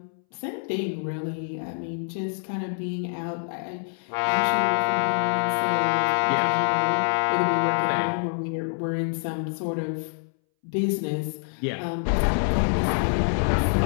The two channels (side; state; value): right; silent; 61 dB below the other